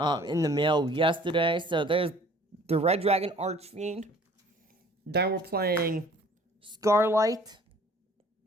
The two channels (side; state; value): both; normal; correlation 0.52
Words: the mail yesterday. So there's the Red Dragon Archfiend. Then we're playing Scarlight